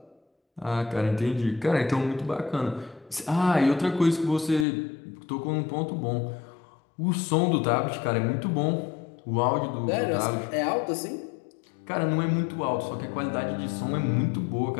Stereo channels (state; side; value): drops out; right; at 4.7 s